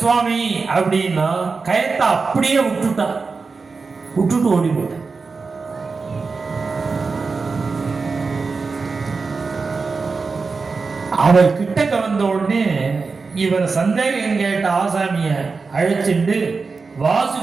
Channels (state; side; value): quieter; left; 4.5 dB